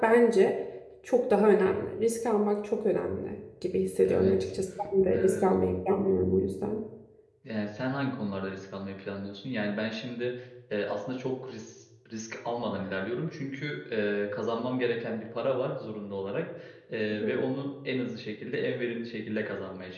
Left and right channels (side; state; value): both; identical; correlation 1.00